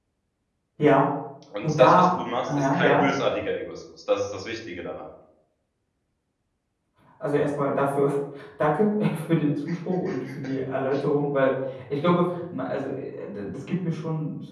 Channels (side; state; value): both; identical; correlation 1.00